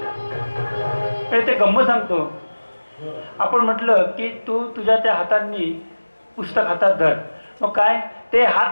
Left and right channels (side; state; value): both; inverted; correlation -1.00